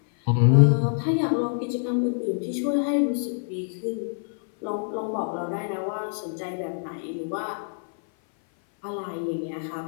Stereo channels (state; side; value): silent; right; 57 dB below the other